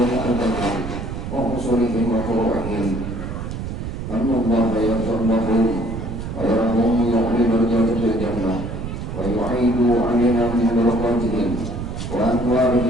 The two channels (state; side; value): noise; right; rumble, 6 dB below the sound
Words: البندري وأصولهم وفروعهم أن الله يغفر لهم ويرهم يعلي درجات في الجنة ويعيد علينا من بركاتهم